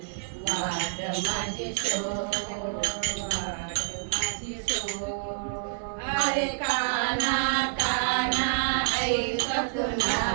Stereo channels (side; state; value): left; silent; digital silence